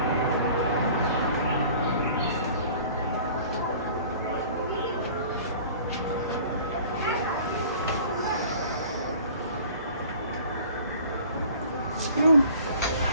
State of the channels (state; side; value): inverted; both; correlation -0.48